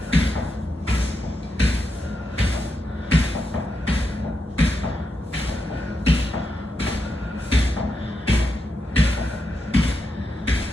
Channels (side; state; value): both; normal; correlation 0.84